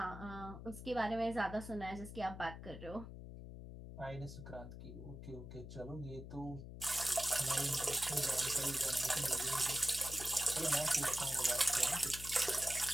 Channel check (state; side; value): noise; left; hum, 11 dB below the sound